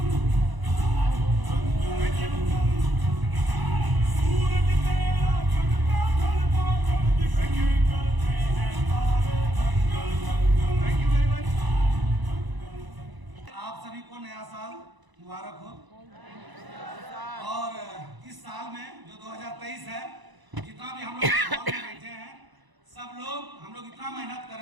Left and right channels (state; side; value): late; left; 1.0 ms